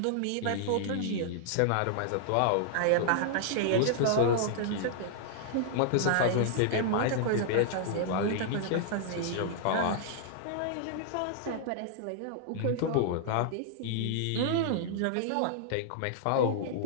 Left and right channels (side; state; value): both; different; correlation -0.01